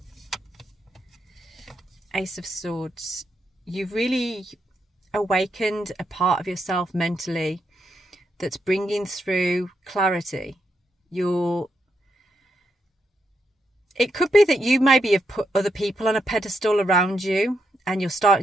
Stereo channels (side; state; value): both; normal; correlation 0.81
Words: Ace of Swords. You've really awakened a part of yourself mentally that's bringing through clarity. It could be that you maybe have put other people on a pedestal around you, and you're